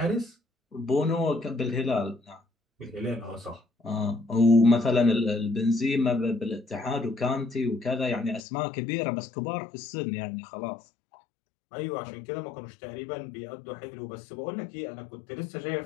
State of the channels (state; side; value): drops out; right; at 8.4 s